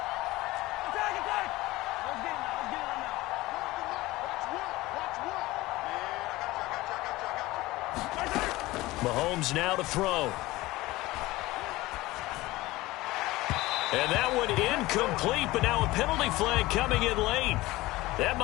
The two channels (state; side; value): quieter; right; 19.1 dB